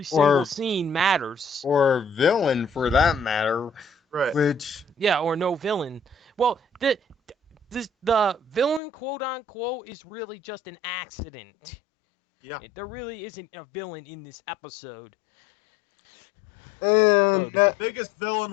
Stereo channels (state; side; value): drops out; right; at 8.8 s